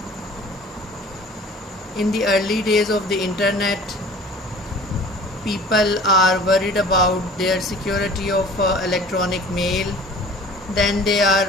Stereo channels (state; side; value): normal; both; correlation 0.46